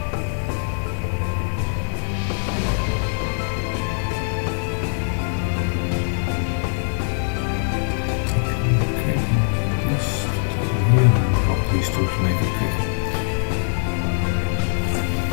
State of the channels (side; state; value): right; silent; 60 dB below the other